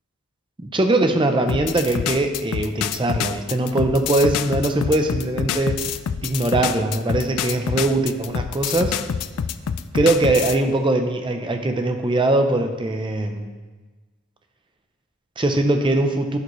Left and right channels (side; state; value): both; normal; correlation 0.60